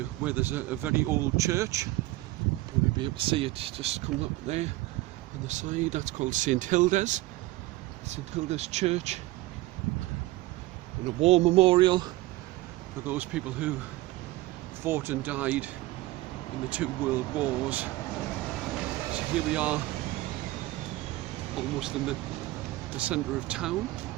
where there's a very old church. You'll be able to see it just coming up there on the side. That's called St Hilda's Church, and a war memorial for those people who fought and died in the 2 world wars. So here we are, almost in the centre of town.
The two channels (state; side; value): quieter; left; 18.4 dB